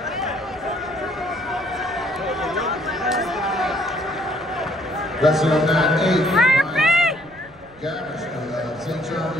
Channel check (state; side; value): noise; right; rumble, 25 dB below the sound